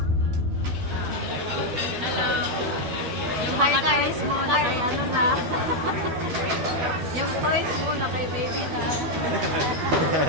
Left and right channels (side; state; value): left; late; 12 ms